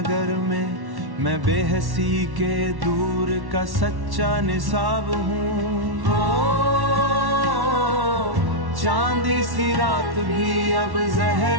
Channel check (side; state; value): left; late; 1.1 ms